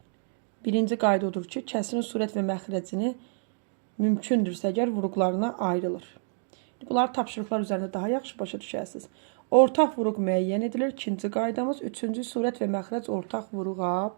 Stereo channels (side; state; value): left; silent; digital silence